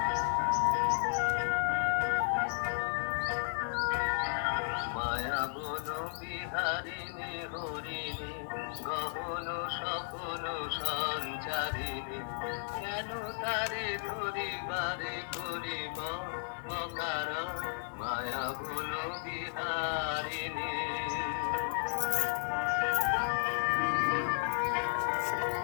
মায়া বন বিহারিণী হরিণী গহন সপন সঞ্চারিণী কেন তারে ধরিবারে করিব অকারণ মায়া বন বিহারিণী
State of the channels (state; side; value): silent; right; 55 dB below the other